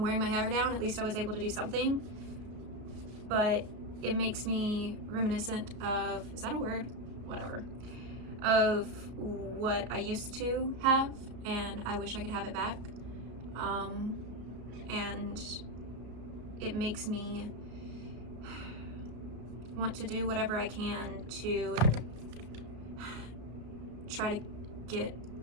wearing my hair down. At least I was able to do something. But it makes me reminiscent of, is that a word? Whatever. Of what I used to have, and I wish I could have it back. And it makes me want to do whatever I can to try to get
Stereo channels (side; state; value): left; late; 33 ms